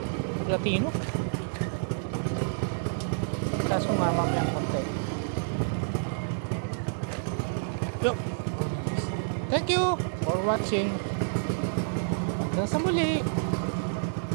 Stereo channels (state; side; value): silent; left; 59 dB below the other